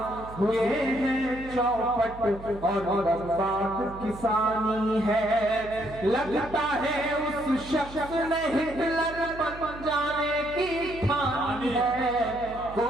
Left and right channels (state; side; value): noise; right; hum, 15 dB below the sound